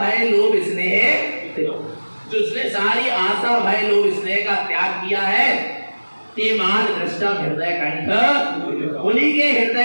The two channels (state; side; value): inverted; both; correlation -1.00